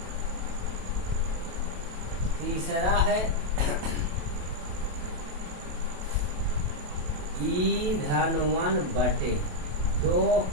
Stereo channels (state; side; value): late; left; 27 ms